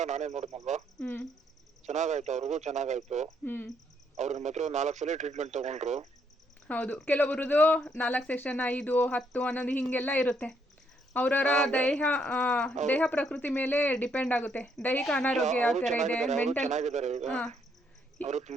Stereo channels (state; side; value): normal; both; correlation 0.72